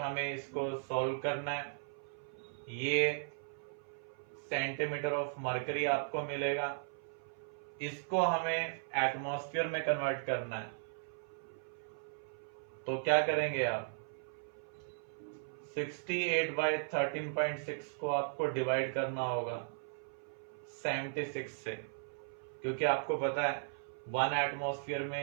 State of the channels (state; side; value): silent; left; 53 dB below the other